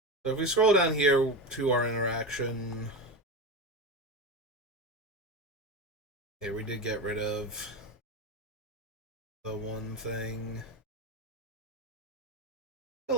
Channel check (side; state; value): both; normal; correlation 0.22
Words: So if we scroll down here to our interaction... Okay, we did get rid of the one thing.